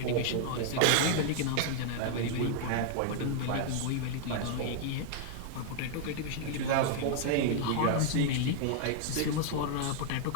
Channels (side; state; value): both; different; correlation -0.01